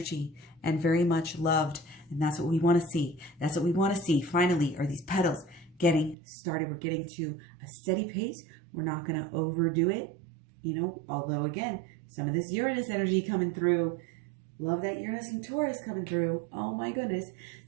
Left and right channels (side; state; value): left; drops out; at 6.2 s